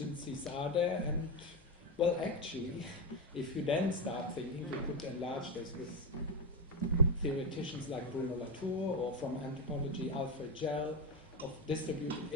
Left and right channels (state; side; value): normal; both; correlation 0.09